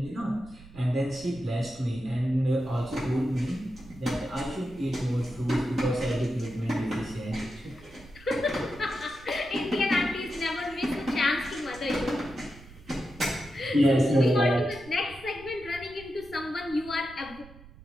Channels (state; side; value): noise; right; rumble, 20 dB below the sound